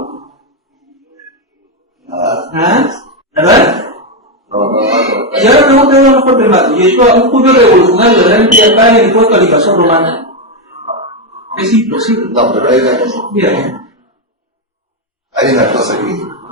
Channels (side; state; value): both; normal; correlation 0.05